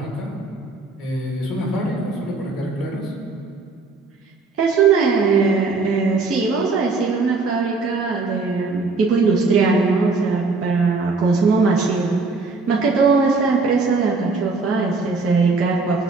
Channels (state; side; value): quieter; left; 4.0 dB